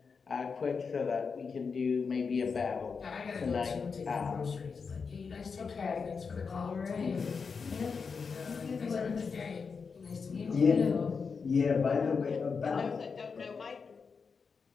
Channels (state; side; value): quieter; right; 5.4 dB